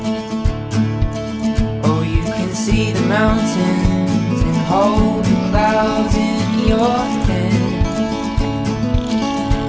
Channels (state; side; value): identical; both; correlation 1.00